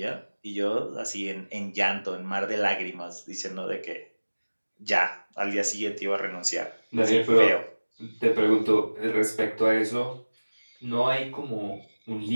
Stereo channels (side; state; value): both; inverted; correlation -1.00